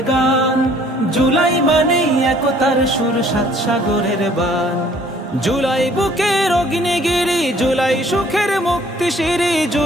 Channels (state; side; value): normal; both; correlation 0.58